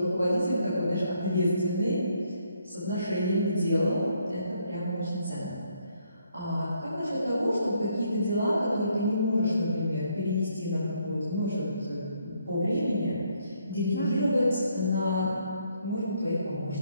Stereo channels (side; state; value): both; inverted; correlation -0.71